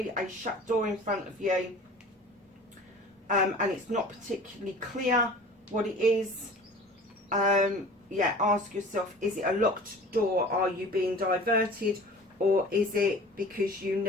a shut door in front of you, and it's not particularly clear what it is, yeah, ask yourself, is it a locked door? Are you being diverted? Or is it because you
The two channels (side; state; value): both; normal; correlation 0.42